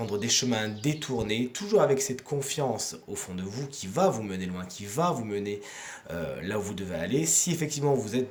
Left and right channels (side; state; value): both; identical; correlation 1.00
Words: des chemins détournés, toujours avec cette confiance au fond de vous qui va vous mener loin, qui va vous mener là où vous devez aller. Si effectivement vous